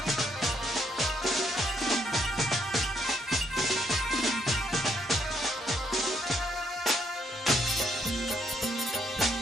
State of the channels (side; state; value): both; normal; correlation 0.73